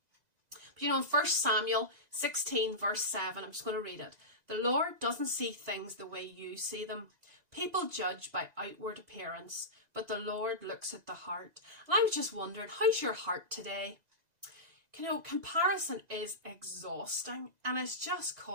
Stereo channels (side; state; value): left; late; 2.0 ms